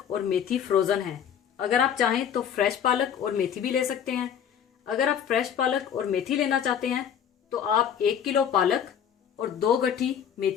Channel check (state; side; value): quieter; right; 8.6 dB